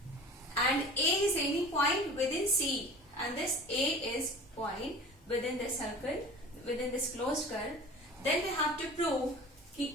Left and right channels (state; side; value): normal; both; correlation 0.40